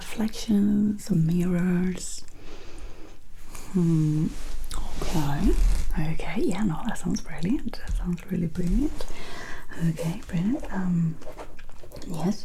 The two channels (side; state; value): both; identical; correlation 1.00